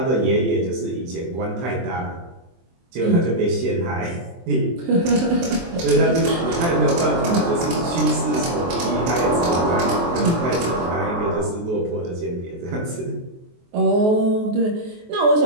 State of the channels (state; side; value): late; left; 23 ms